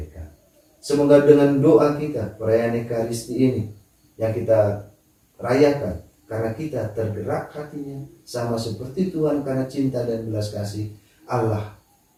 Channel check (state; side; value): identical; both; correlation 1.00